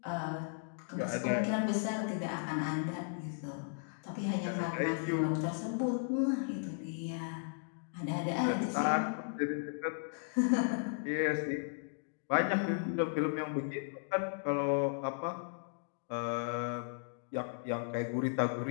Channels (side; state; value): right; silent; digital silence